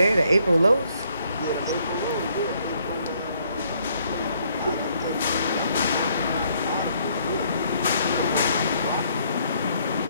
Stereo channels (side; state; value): both; inverted; correlation -0.68